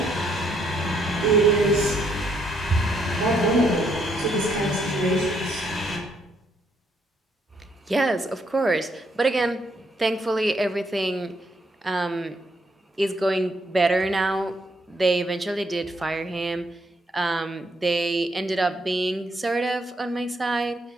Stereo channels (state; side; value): normal; both; correlation 0.73